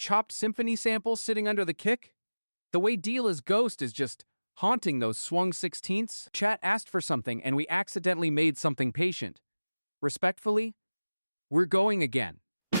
symphony sample sitting under the kick? The way Deela's ghost is just haunting those swung 16ths. Chat asked for something and we accidentally made something patient. Respectfully, we're going again.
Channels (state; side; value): inverted; both; correlation -0.99